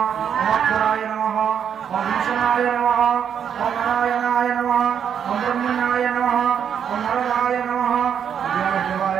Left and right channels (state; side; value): quieter; left; 8.2 dB